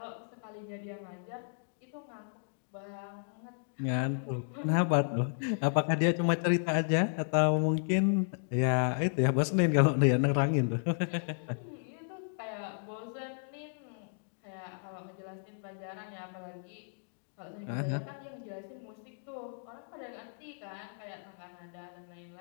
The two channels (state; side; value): silent; right; digital silence